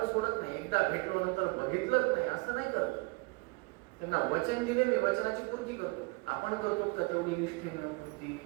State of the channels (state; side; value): quieter; left; 28.0 dB